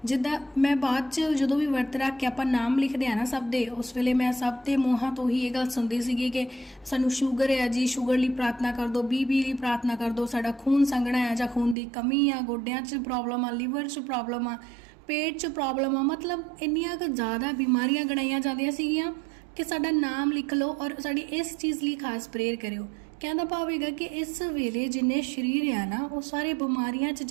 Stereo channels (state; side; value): drops out; left; at 11.8 s